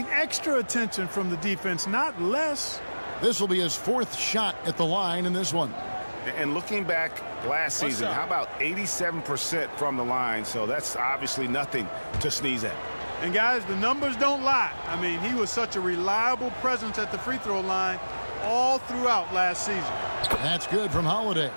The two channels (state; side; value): inverted; both; correlation -1.00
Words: extra attention from the defense, not less. This will be his fourth shot at the line in this one. And looking back last season, how about 87% from the line? So that's obviously nothing to sneeze at. And guys, the numbers don't lie. I mean, he was such a reliable presence at the free throw line all throughout last season. That's good from Holiday.